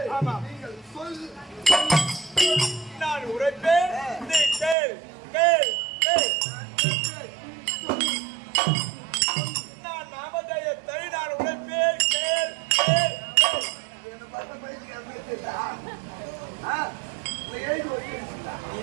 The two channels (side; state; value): left; drops out; at 4.8 s